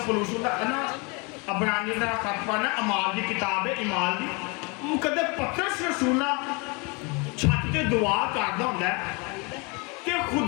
पलूस ना अबरानी का खत पढ़ना, अमाल की किताब है इमाल की, कदे पतरस रसूल ना छत ते दुआ करदा हुंदा है कि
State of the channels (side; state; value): right; quieter; 30.2 dB